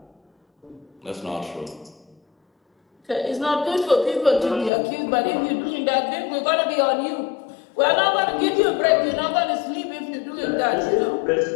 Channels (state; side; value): drops out; right; at 4.7 s